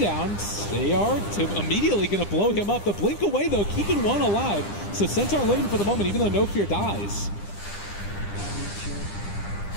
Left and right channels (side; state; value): right; late; 9.9 ms